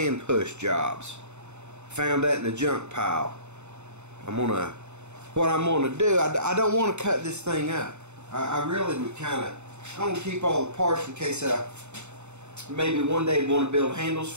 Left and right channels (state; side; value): late; left; 0.82 ms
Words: push jobs. Found that in the junk pile. What I'm gonna do, I don't want to cut this thing up. I really would I want to keep all the parts in case I maybe one day want to build handles